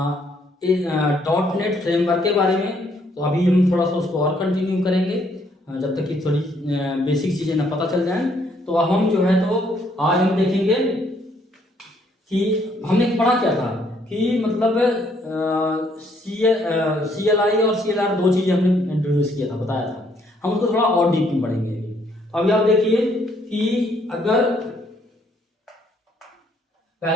डॉट नेट फ्रेमवर्क के बारे में, तो अभी हम थोड़ा सा उसको और कंटिन्यू करेंगे जब तक कि थोड़ी बेसिक चीज़ें ना पता चल जाएं। तो अब हम जो है तो आज हम देखेंगे कि हमने पढ़ा क्या था कि मतलब CLI और CLR दो चीज़ें हमने इंट्रोड्यूस किया था, बताया था। हम उसको थोड़ा और डीप में पढ़ेंगे। तो अभी आप देखिए कि अगर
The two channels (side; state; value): both; normal; correlation 0.68